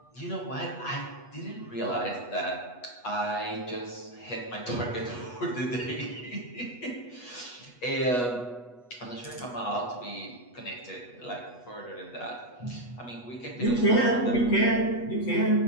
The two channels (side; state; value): right; late; 8.2 ms